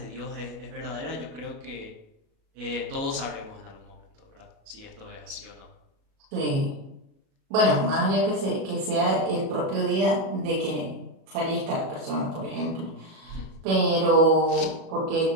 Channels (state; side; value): late; left; 37 ms